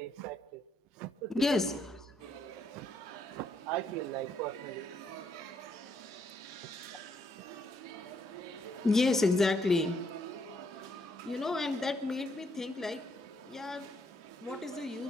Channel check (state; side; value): normal; both; correlation 0.73